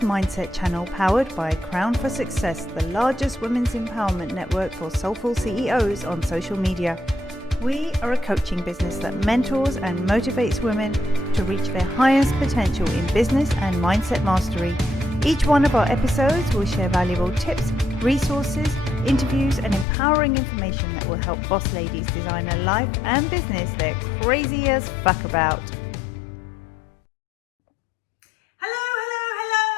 channel, powered by Crown for Success, the largest women's empowerment network for soulful CEOs on social media. We are a coaching business that mentors and motivates women to reach their highest potential in business and mindset mastery. Each one of our episodes will share valuable tips, resources, interviews, and empowering information that will help boss ladies design a life and business they're crazy as fuck about.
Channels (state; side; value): drops out; right; at 19.9 s